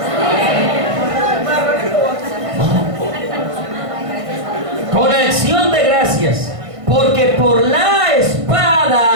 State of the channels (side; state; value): left; late; 1.6 ms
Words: Con acción de gracias, porque por la